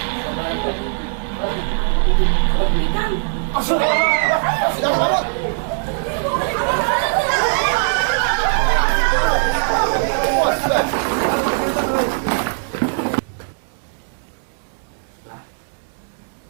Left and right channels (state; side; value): silent; left; digital silence